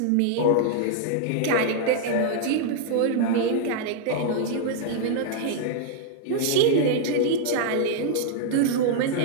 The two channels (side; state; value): both; different; correlation -0.01